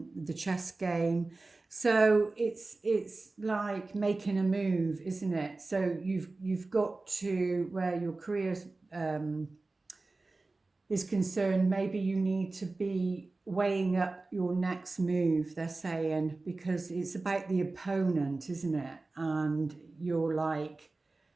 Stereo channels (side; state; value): left; quieter; 3.4 dB